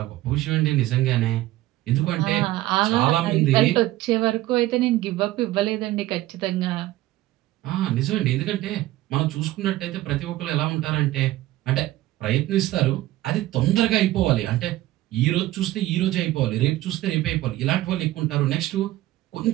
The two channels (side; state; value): left; quieter; 16.1 dB